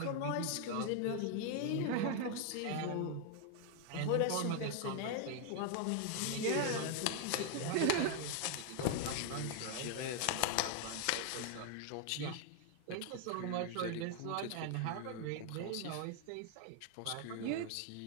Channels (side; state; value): both; different; correlation 0.00